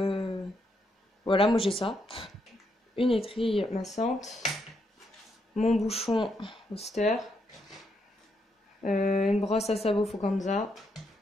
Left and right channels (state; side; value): normal; both; correlation 0.78